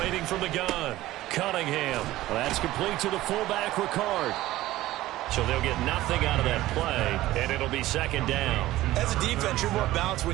from the gun, Cunningham. Well, that's complete to the fullback, Ricard. So they'll get nothing out of that play, and it'll be 2nd down. As a defense, you're more balanced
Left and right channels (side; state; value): left; quieter; 16.1 dB